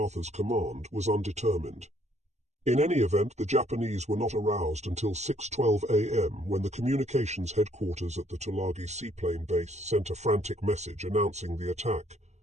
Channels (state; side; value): late; left; 0.33 ms